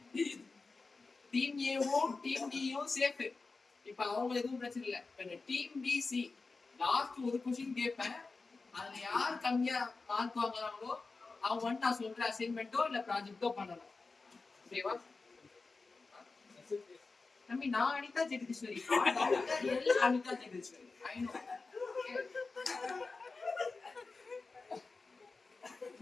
டீம் ஏவும் டீம் டியும் சேஃப். இப்ப அவங்க எதுவும் பிரச்சனை இல்ல. இப்ப டீம் பிசி லாஸ்ட் ஒரு क्वेश्चन கேட்பேன். அதுல யார் கம்மியா மார்க் வாங்குறாங்களோ அவங்க வந்து நான் சொல்ற அசைன்மென்ட்டோ இல்ல ப்ராஜெக்ட்டோ பண்ணணும். ஓகேவா? தம்பி நான் அனிதா ஜெகதீஸ்வரி. அனிதா ஜெகதீஸ்வரி. I know.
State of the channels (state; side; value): quieter; right; 4.0 dB